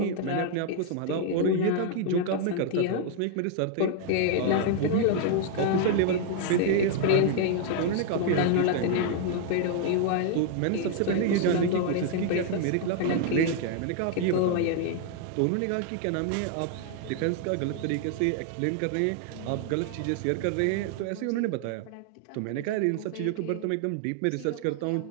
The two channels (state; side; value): different; both; correlation 0.00